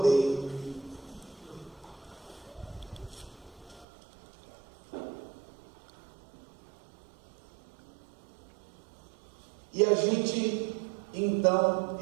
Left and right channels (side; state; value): left; drops out; at 3.9 s